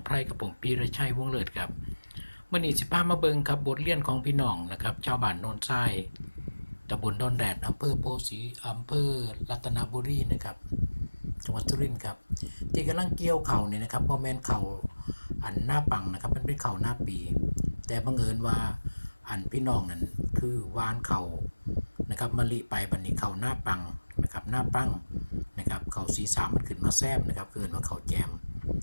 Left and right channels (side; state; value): both; inverted; correlation -1.00